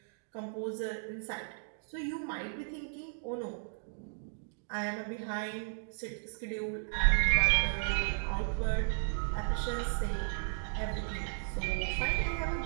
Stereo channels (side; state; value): left; silent; digital silence